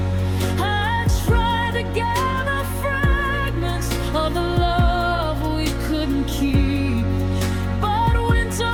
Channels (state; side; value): identical; both; correlation 1.00